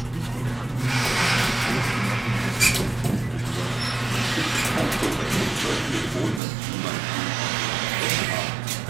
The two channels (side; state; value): left; drops out; at 6.4 s